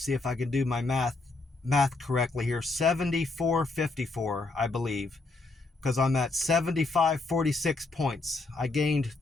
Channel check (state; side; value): quieter; right; 3.4 dB